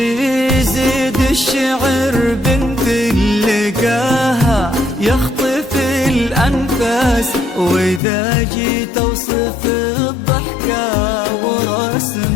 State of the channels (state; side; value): drops out; right; at 8.0 s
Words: الشعر بنت اللقاها يخطف الأنفاس، وإذا جيت أوصف الضحكة